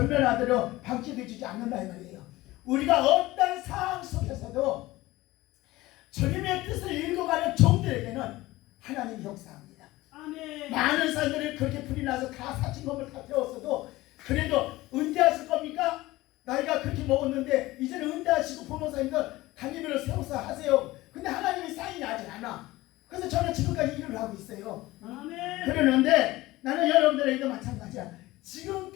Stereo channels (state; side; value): quieter; right; 18.5 dB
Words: 방치해 주지 않는다 이 말이에요. 우리가 어떤 상황 속에서도 주님의 뜻을 읽어가는 종들에게는 하나님이 역사합니다. 아멘. 많은 사람들이 그렇게 불이 나서 다 사칭범을 다 태웠어도 그래도 은퇴하실 겁니까? 나이가 그렇게 먹었는데 이제는 은퇴하시고 부모사님들 당임을 세워서 하세요. 근데 하나님이 사인이 아직 안 와. 그래서 저는 지금까지 일을 하고 있어요. 아멘. 그러는데 나는 여러분들에게도 마찬가지야.